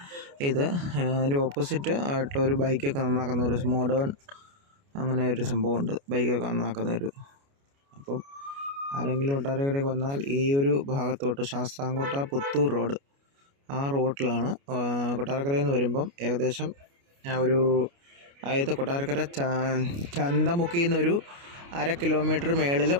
ഇത്. അതിൻ്റെ ഓപ്പോസിറ്റ് ആയിട്ടുള്ള ഒരു ബൈക്കൊക്കെ നന്നാക്കുന്ന ഒരു മോഡേൺ അങ്ങനെ ഒരു സംഭവമുണ്ട്. ബൈക്കൊക്കെ നന്നാക്കുന്ന ഒരു. അപ്പം ആരെങ്കിലും കൊട്ടാരക്കരയ്ക്ക് വന്നാൽ ഈ ഒരു ഭാഗത്തോട്ട് ശാസ്താംകോട്ട പുത്തൂർ റോഡ്, ആ റോഡിലാണ്. കൊട്ടാരക്കരയിൽ നിന്ന് വരുമ്പം ഏകദേശം അതായത് കൊട്ടാരക്കര ചന്തമുക്കിൽ നിന്നൊരു 1/2 കിലോമീറ്റർ മേളിൽ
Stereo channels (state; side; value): late; left; 29 ms